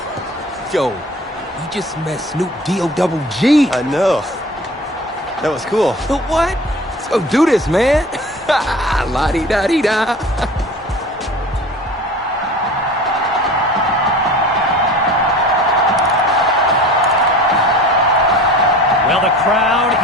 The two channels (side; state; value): both; normal; correlation 0.40